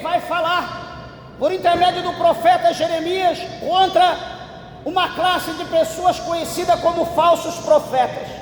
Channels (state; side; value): identical; both; correlation 1.00